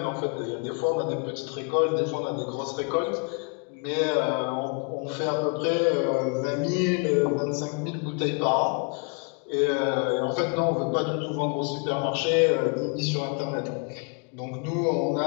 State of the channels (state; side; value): quieter; right; 37.1 dB